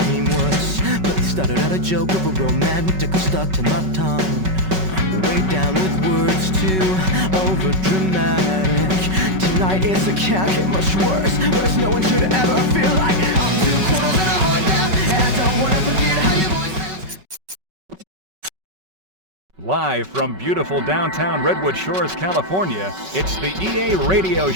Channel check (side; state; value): left; late; 5.3 ms